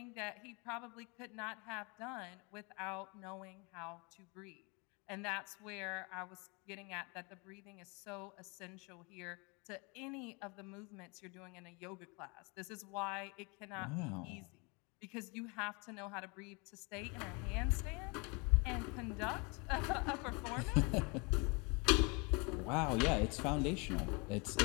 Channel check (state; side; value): quieter; right; 30.3 dB